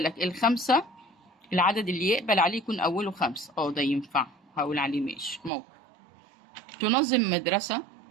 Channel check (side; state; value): left; drops out; at 5.5 s